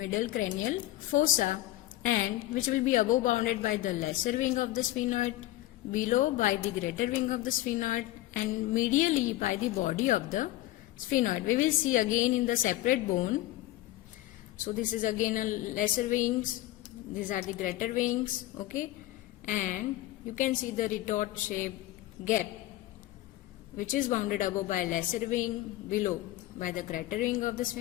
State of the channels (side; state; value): right; quieter; 16.0 dB